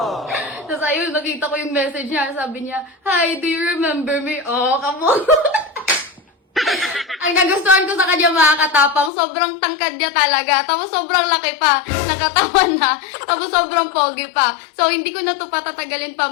Tapos ayun, nakita ko yung message niya. Sabi niya, hi, do you remember me? Oh, come on. Ang nagustuhan ko sa kanya mga katapang, sobrang tangkad niya talaga. Tapos sobrang laki pa, nakatawan na. Tapos sobrang pogi pa. So hindi ko na to patatagalin pa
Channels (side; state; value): right; drops out; at 9.1 s